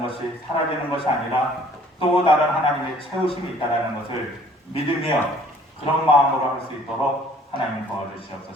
것이 사라지는 것이 아니라 또 다른 하나님의 채우심이 있다는 것을 믿으며 그런 마음으로 할 수 있도록 하나님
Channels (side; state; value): both; normal; correlation 0.56